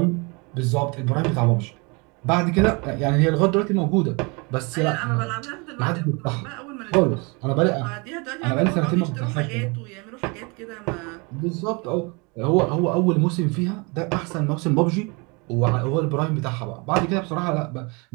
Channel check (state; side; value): quieter; left; 29.5 dB